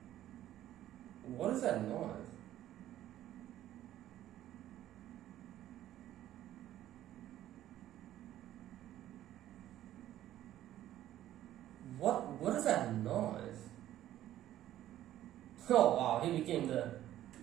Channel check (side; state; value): left; quieter; 12.9 dB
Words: What is that noise? What is that noise? Oh wow, he became the